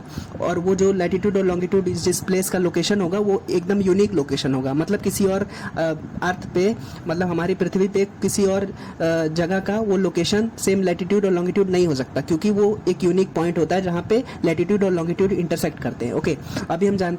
और वो जो लैटिट्यूड और लॉन्गिट्यूड जिस प्लेस का लोकेशन होगा वो एकदम यूनिक लोकेशन होगा। मतलब किसी और अर्थ पे, मतलब हमारी पृथ्वी पे किसी और जगह का वो लोकेशन सेम लैटिट्यूड और लॉन्गिट्यूड नहीं हो सकता, क्योंकि वो एक यूनिक पॉइंट होता है जहाँ पे लैटिट्यूड और लॉन्गिट्यूड इंटरसेक्ट करते हैं। ओके, अभी हम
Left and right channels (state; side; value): identical; both; correlation 1.00